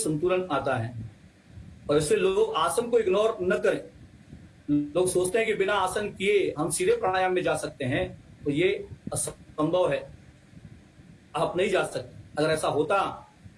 आता है। और इससे लोग आसन को इग्नोर न करें। लोग सोचते हैं कि बिना आसन किए हम सीधे प्राणायाम में जा सकते हैं, तो ये असंभव है, आप नहीं जा सकते। अगर ऐसा होता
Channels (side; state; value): both; identical; correlation 1.00